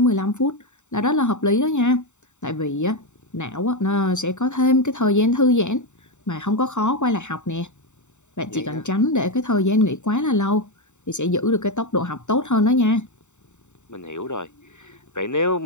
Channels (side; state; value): right; late; 0.84 ms